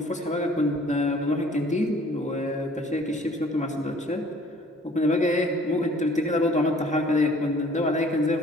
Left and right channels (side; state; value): both; normal; correlation 0.55